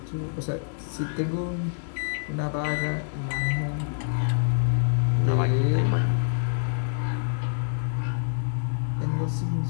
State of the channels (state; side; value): silent; right; 61 dB below the other